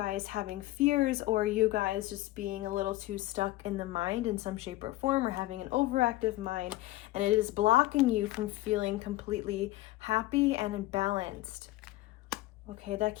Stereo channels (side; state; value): right; quieter; 17.6 dB